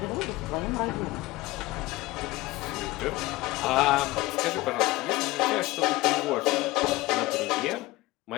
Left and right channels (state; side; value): quieter; right; 19.5 dB